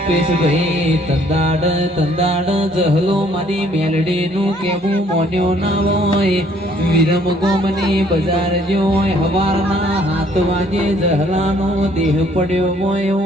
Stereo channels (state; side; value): normal; both; correlation 0.62